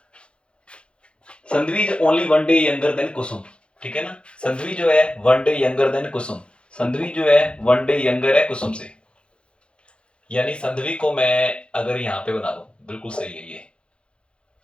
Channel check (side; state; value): right; late; 0.057 ms